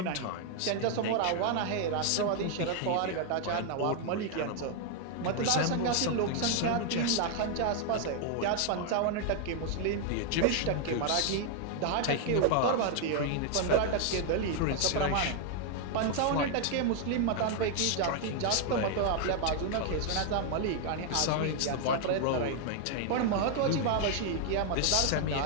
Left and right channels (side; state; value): both; different; correlation 0.00